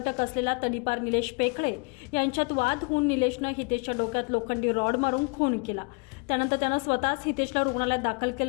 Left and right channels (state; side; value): quieter; right; 32.4 dB